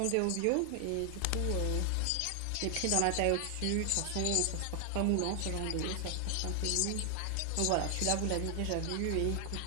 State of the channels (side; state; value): both; different; correlation 0.00